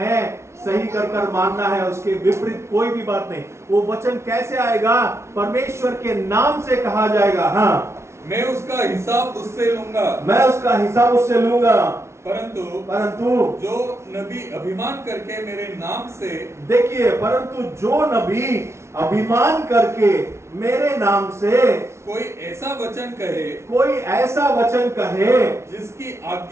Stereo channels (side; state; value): left; late; 0.13 ms